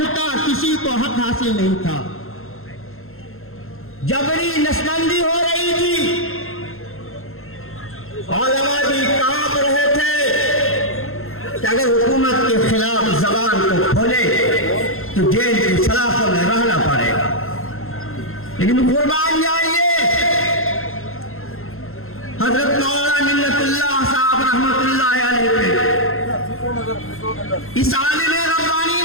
का किसी को हक हासिल नहीं था, जबरी नसबंदी हो रही थी, उलमा भी कांप रहे थे कि अगर हुकूमत के खिलाफ जबान को खोले तो जेल की सलाखों में रहना पड़ेगा। लेकिन कुर्बान जाइए, हजरत मौलाना मिन्नतुल्लाह साहब रहमतुल्लाह अलैह इस आलिम रब्बानी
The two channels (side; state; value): right; late; 0.61 ms